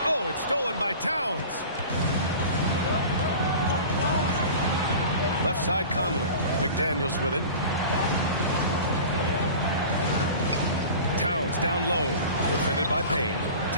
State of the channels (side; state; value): both; inverted; correlation -0.37